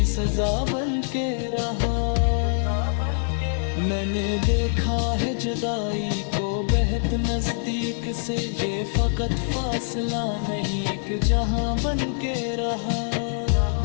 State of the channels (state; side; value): silent; right; 57 dB below the other